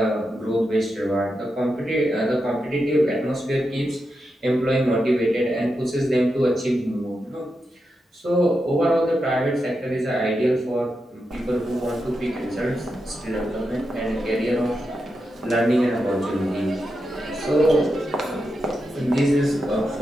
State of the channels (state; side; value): normal; both; correlation 0.87